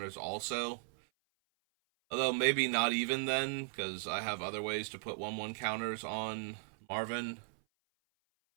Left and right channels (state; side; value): silent; left; 53 dB below the other